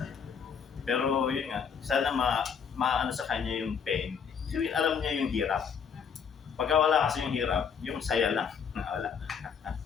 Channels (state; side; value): quieter; right; 6.8 dB